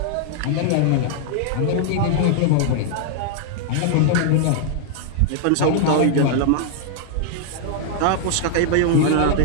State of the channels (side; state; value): both; different; correlation -0.01